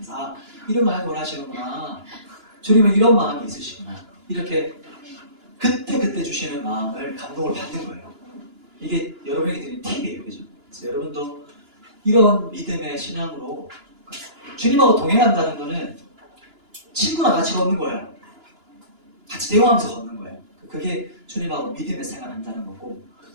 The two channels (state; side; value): late; left; 2.9 ms